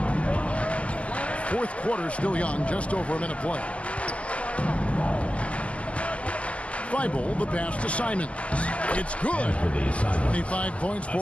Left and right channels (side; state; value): right; late; 0.062 ms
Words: Fourth quarter still young, just over a minute play. Thibault, the pass to Simons. It's good. 25 points